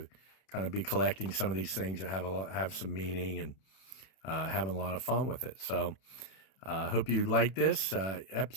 kind of be collecting some of these things that have some meaning, and having a lot of fun with it. So hope you liked this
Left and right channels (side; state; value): right; late; 31 ms